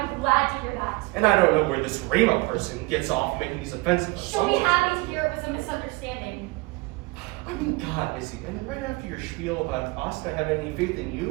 glad to hear that. And I don't know where this Rima person gets off making these offensive She'll be assumptions. happy to hear it was a misunderstanding. I mean, God, Izzy, and right after your spiel about us not having any faith in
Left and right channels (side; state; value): left; quieter; 24.6 dB